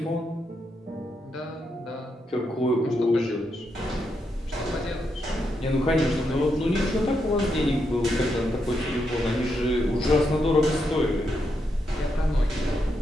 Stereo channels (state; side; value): normal; both; correlation 0.82